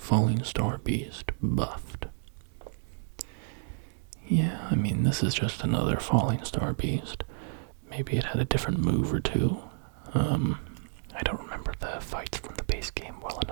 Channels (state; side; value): silent; left; digital silence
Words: Star Beast Buffed. Yeah, this is just another Falling Star Beast. Maybe it had a different move or two. I don't remember the fights from the base game well